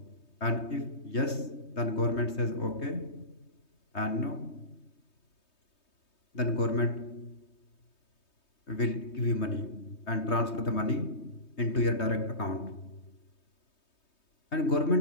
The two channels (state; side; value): late; right; 3.2 ms